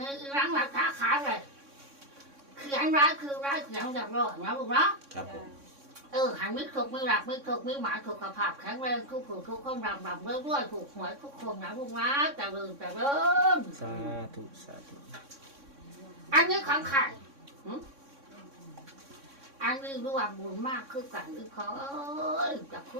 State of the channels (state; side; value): late; left; 3.6 ms